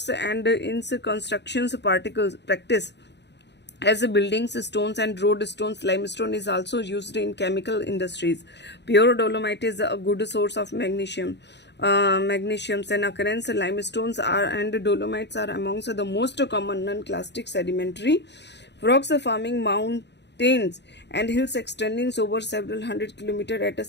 and in constructions particles practice. As buildings, stones and road stones, limestone is also used in chemical industries. Pure dolomite is a good source of magnesium. Magnesiums and occurrence limestones and dolomites are amongst the most common non-clastic sedimentary rocks forming mountains and hills extending over several hundred kilometers at a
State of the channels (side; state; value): right; late; 0.50 ms